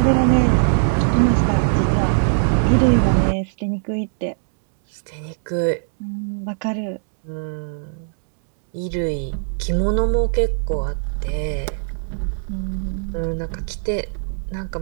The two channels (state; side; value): silent; left; digital silence